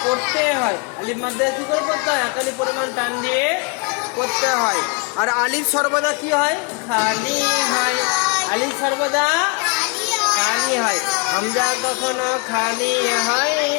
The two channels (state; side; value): quieter; right; 32.2 dB